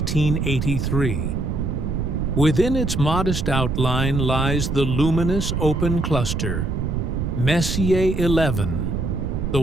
Within its modest outline lies the luminous open cluster, Messier 11, the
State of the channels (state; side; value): noise; right; rumble, 1 dB below the sound